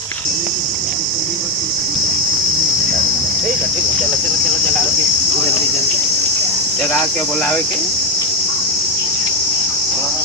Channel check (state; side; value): normal; both; correlation 0.07